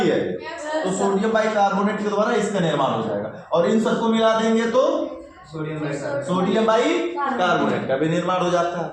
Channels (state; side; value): identical; both; correlation 1.00